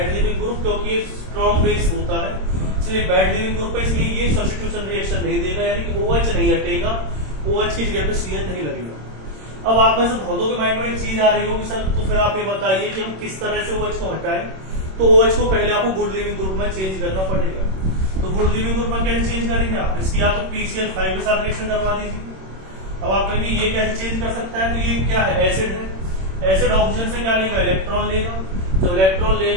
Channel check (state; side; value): late; left; 26 ms